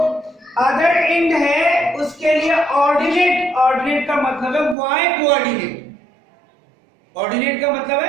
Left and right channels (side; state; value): left; drops out; at 4.8 s